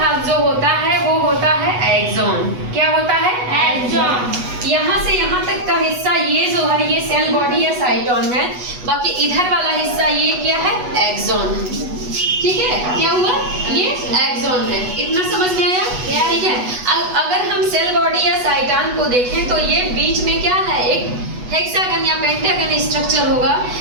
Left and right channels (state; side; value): late; left; 8.1 ms